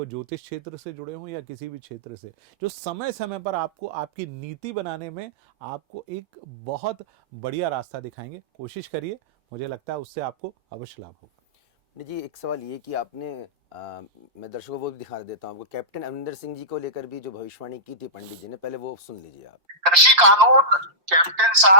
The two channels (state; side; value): late; left; 5.7 ms